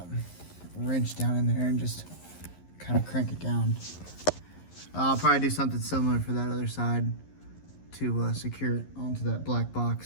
wrench down in there and just kind of crank it down. I'll probably do something similar for that other side to secure it onto that black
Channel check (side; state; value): right; late; 11 ms